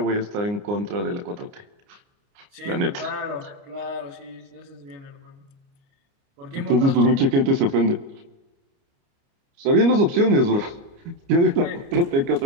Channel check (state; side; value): late; left; 29 ms